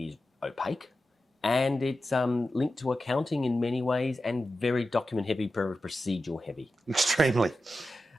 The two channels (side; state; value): both; normal; correlation 0.92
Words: opaque. And it's linked to accounting in many ways and very document heavy, very procedural heavy. Extremely.